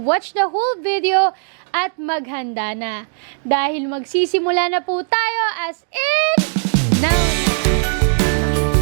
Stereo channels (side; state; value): left; silent; 67 dB below the other